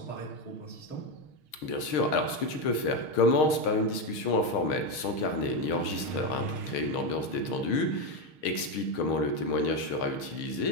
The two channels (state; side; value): late; right; 6.5 ms